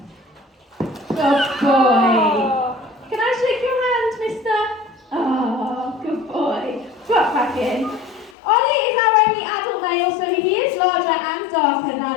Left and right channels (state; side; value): drops out; right; at 8.3 s